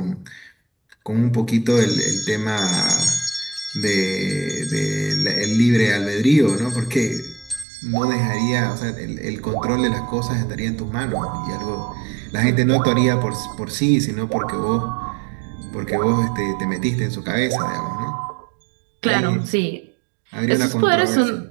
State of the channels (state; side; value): drops out; left; at 7.7 s